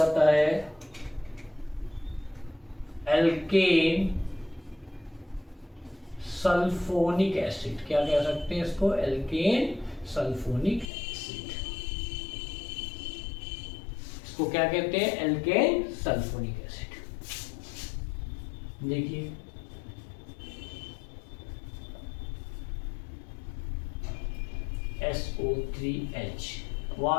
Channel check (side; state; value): right; drops out; at 10.9 s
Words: है? Alkane sulphonic acid. क्या कह सकते हैं इसको? Alkane sulphonic acid. इसको क्या कहते हैं? Alkane sulphonic acid. देखिए SO3H